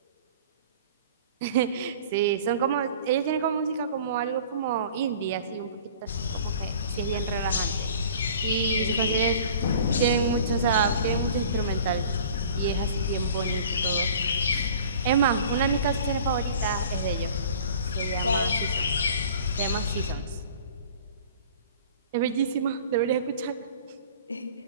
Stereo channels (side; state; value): both; inverted; correlation -0.45